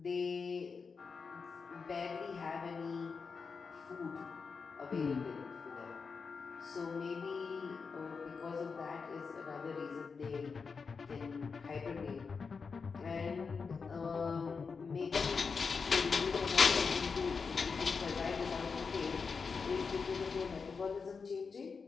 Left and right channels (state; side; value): quieter; right; 5.2 dB